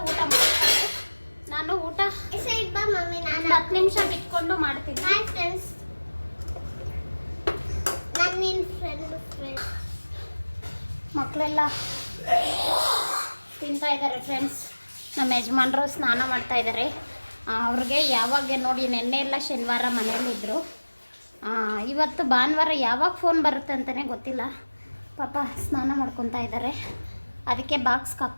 ಊಟ ಮಾಡ್ತಾರೆ, ನಾನು ಊಟ 10 ನಿಮಿಷ ಬಿಟ್ಕೊಂಡು ಮಾಡ್ತೀನಿ. ಮಕ್ಕಳೆಲ್ಲ ತಿಂತಾ ಇದ್ದಾರೆ ಫ್ರೆಂಡ್ಸ್. ನಮ್ಮ ಯಜಮಾನ್ರು ಸ್ನಾನ ಮಾಡ್ತಾ ಇದ್ದಾರೆ. ಅವ್ರಿಗೆ ಯಾವಾಗ ನೋಡಿ, ನೆನ್ನೆ ಎಲ್ಲ ಶನಿವಾರ ಮನೇಲಿದ್ದರು. ಇವತ್ತು ಭಾನುವಾರ ಯಾವಾಗ ಫೋನ್ ಬರುತ್ತೆ ಅಂತಲೇ ಗೊತ್ತಿಲ್ಲ. ಪಾಪ ಸ್ನಾನ ಮಾಡ್ಕೊತಾ ಇದ್ದಾರೆ. ಅದಕ್ಕೆ ಬಾಕ್ಸ್ಗೆ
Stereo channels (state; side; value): inverted; both; correlation -1.00